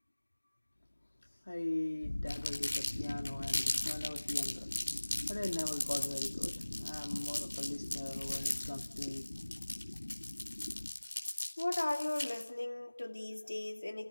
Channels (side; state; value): both; inverted; correlation -1.00